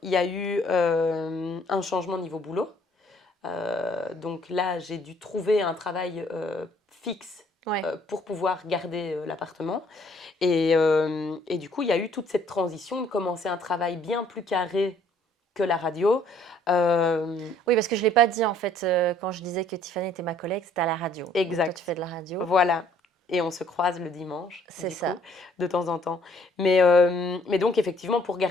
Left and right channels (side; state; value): both; normal; correlation 0.61